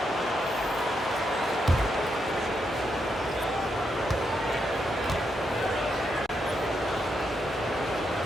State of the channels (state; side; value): normal; both; correlation 0.81